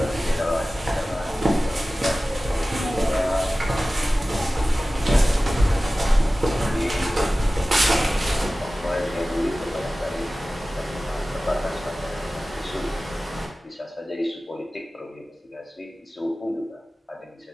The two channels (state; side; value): normal; both; correlation 0.96